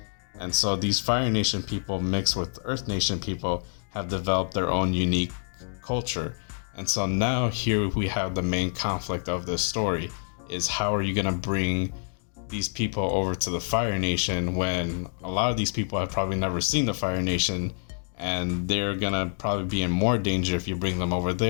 And so these Fire Nation people mixed with Earth Nation people have developed their own unique culture. And so now here we have the main conflict of this story is how are you going to bring these people over to the Fire Nation when a lot of these people have probably never seen the Fire Nation, and they're going to probably be in more danger if you bring them over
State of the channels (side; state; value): right; silent; digital silence